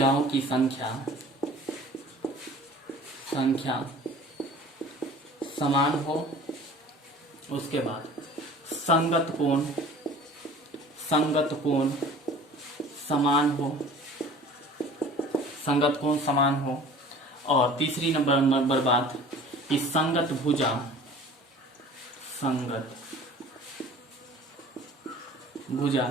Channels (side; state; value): both; normal; correlation 0.45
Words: उसके बाद संगत कोण समान हो, और तीसरी नंबर बात कि संगत भुजा